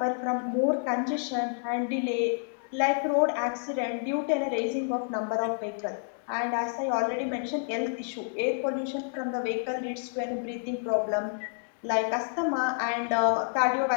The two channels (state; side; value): silent; right; digital silence